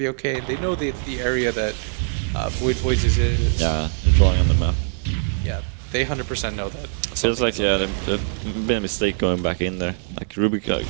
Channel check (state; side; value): silent; left; digital silence